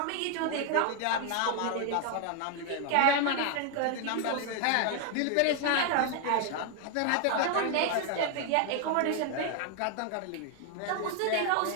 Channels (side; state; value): both; different; correlation 0.00